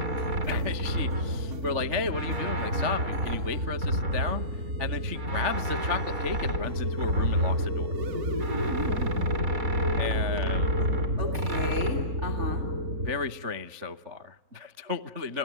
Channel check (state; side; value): late; left; 3.5 ms